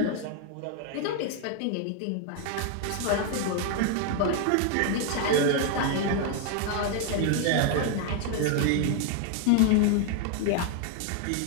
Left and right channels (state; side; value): different; both; correlation 0.00